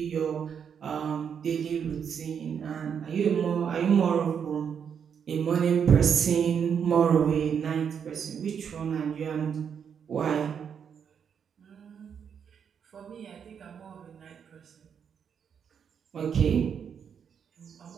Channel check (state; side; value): quieter; left; 7.4 dB